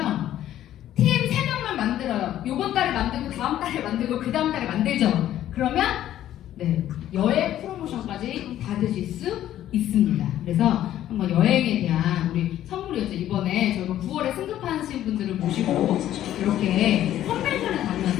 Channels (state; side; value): quieter; right; 12.3 dB